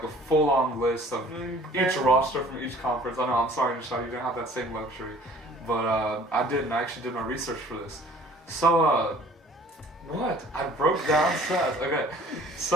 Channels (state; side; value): normal; both; correlation 0.51